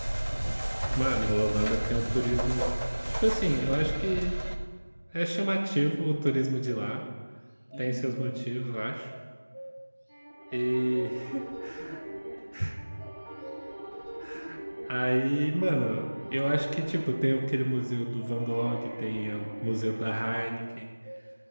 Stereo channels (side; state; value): both; inverted; correlation -1.00